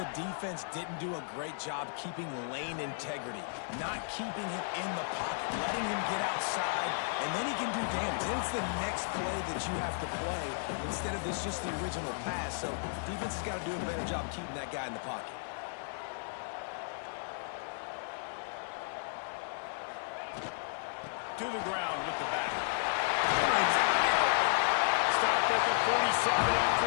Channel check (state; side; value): silent; right; 55 dB below the other